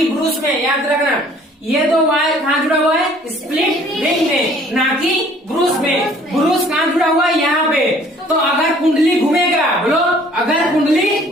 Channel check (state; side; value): normal; both; correlation 0.55